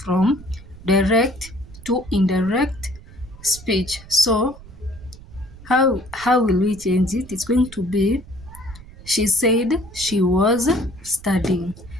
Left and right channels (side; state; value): right; noise; rumble, 18 dB below the sound